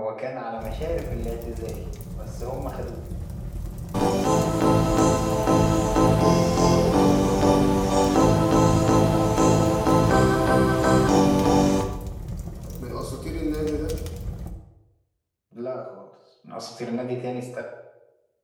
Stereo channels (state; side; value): identical; both; correlation 1.00